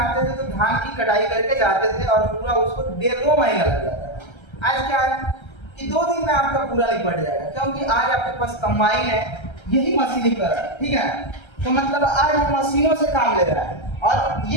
थे तो धान की कटाई करके जाते थे, और पूरा उसको 1.5-2 महीना लग जाता था। आज क्या है कि 2 दिन में आपका पूरा निपट जाएगा, क्योंकि आज आपके पास कंबाइन है, यही मशीनीकरण। ठीक है। तो मतलब आज हम मशीनों से काम ले रहा है, और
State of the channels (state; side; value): late; right; 1.3 ms